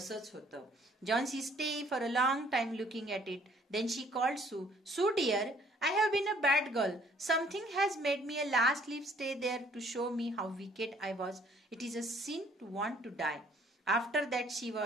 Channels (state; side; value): normal; both; correlation 0.60